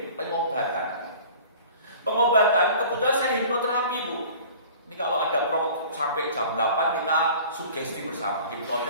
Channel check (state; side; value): inverted; both; correlation -0.45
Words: pengobatan. Pengobatan kebetulan saya hipnoterapi Bu. Ini kalau ada sampai jam 8 kita sugesti bersama,